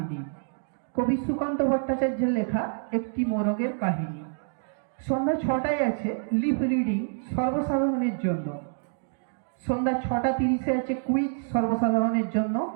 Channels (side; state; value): left; silent; digital silence